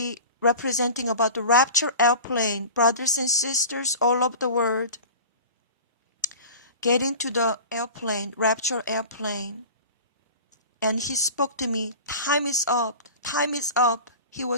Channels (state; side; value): inverted; both; correlation -0.36